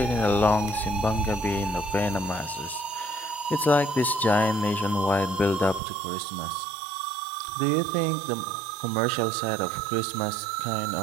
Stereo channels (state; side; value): drops out; left; at 5.8 s